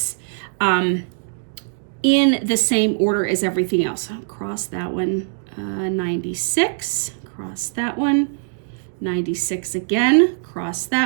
in the same order as everything else. I'll cross that one, 96, cross that one, 96 again, cross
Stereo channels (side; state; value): left; silent; digital silence